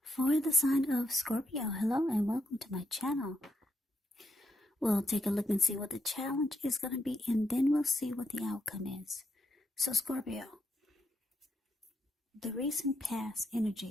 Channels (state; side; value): normal; both; correlation 0.80